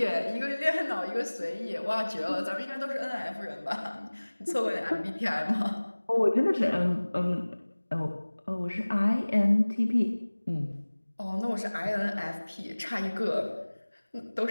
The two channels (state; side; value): inverted; both; correlation -1.00